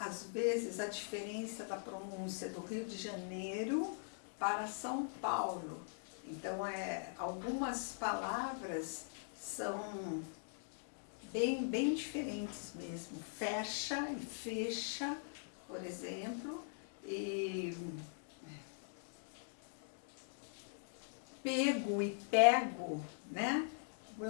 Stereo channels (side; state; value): right; silent; digital silence